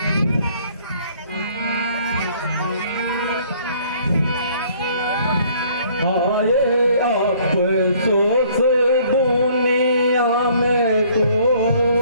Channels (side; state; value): both; inverted; correlation -0.59